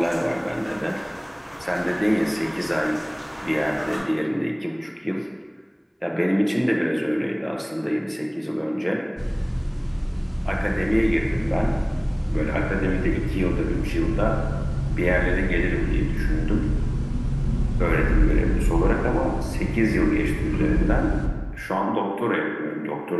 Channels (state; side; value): identical; both; correlation 1.00